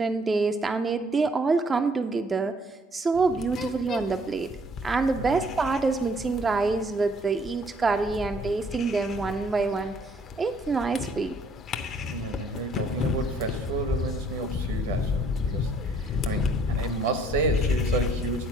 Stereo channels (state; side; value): normal; both; correlation 0.63